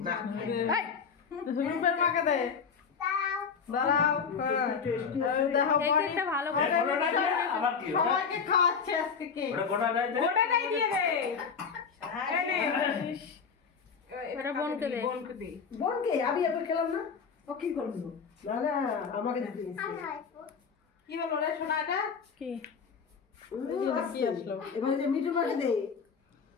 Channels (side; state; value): right; quieter; 6.0 dB